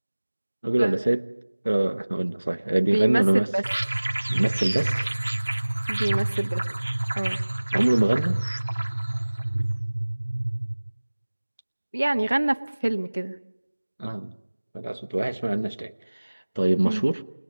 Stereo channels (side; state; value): both; inverted; correlation -1.00